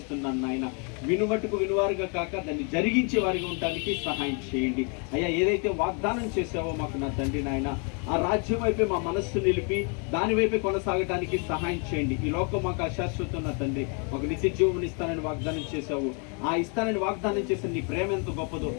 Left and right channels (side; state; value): right; quieter; 37.3 dB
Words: నాయన. వినుమట్టుకు వినువారుగా కాక దాన్ని జరిగించే వారిగా ఉండడానికి సహాయం చేయండి అయ్యా. ఏదైతే వాగ్దానం చేసావో మాకు నా తండ్రి నాయన, ఆ రాజ్యం వైపే మా మనస్సు నిలిపి దాని వైపే కొనసాగడానికి సహాయం చేయండి. ఈ లోకం మాకు అశాశ్వతం నా తండ్రి, మాకు నిత్య జీవం ఇస్తానని వాగ్దానం చేశావు. ఆ ఇస్తానని వాగ్దానం చేసిన నీ ప్రేమ ఎంత గొప్పదో,